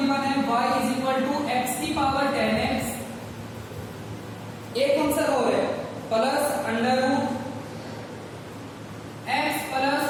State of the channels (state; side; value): identical; both; correlation 1.00